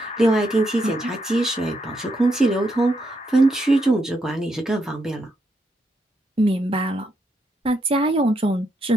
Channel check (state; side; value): normal; both; correlation 0.79